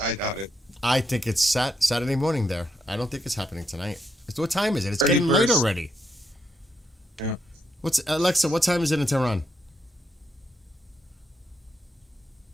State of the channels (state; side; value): normal; both; correlation 0.80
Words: I doubt it. I think it's Saturday morning there. I don't think it's happening tonight. What time is it? It's 31st. getting late already. Yeah. Alexa, what time is it in Tehran?